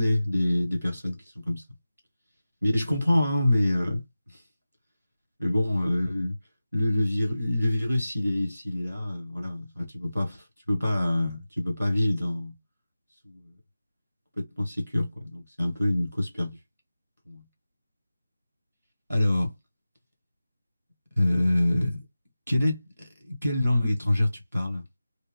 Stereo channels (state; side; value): inverted; both; correlation -0.96